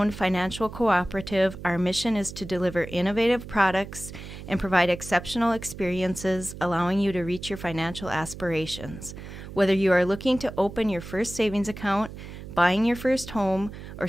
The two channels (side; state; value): right; noise; hum, 12 dB below the sound